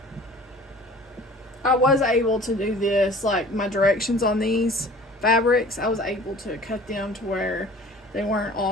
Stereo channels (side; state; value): both; normal; correlation 0.46